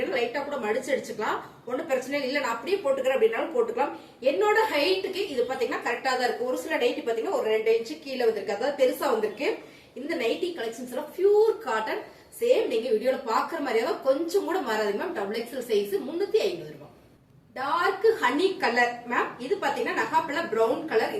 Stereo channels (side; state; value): both; identical; correlation 1.00